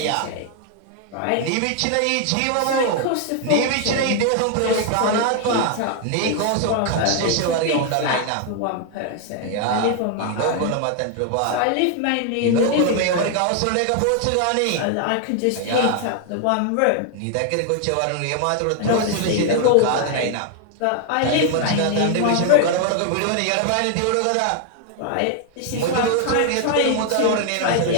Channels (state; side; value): different; both; correlation 0.00